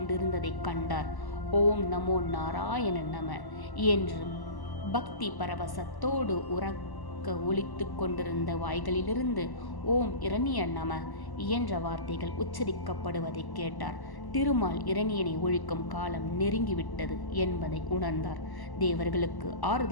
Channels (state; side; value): late; right; 1.0 ms